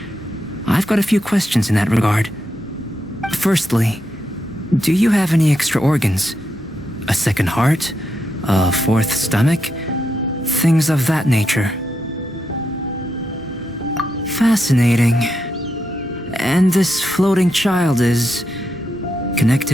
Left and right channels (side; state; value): both; normal; correlation 0.83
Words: I've got a few questions in that regard. Firstly, do you have any extra organs? A second heart? A fourth stomach? Things of that nature. Fascinating. And this floating child is